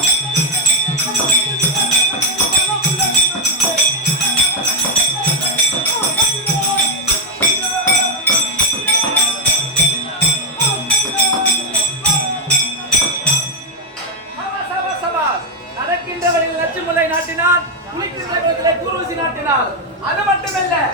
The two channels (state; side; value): normal; both; correlation 0.04